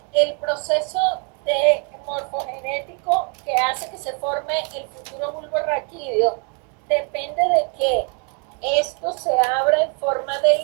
el proceso de morfogenético que hace que se forme el futuro bulbo raquídeo depende de que esto se abra en forma de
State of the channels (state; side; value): quieter; left; 38.5 dB